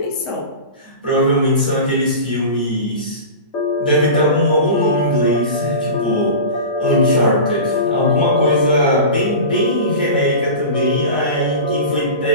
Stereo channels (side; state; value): both; inverted; correlation -0.31